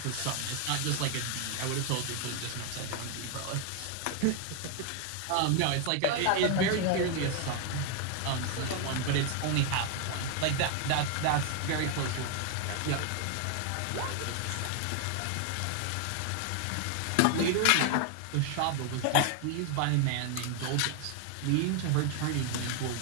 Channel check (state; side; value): different; both; correlation 0.00